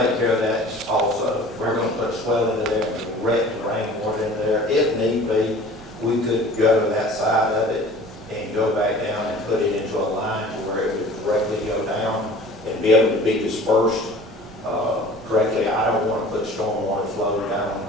care of that also. We're gonna put swell into there, and direct rainwater in there. If need be, we could go to that side of it and go back down and put it into a line to where it would directly go down and be able to be dispersed correctly. I don't wanna put stormwater flowing down on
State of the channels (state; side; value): normal; both; correlation 0.45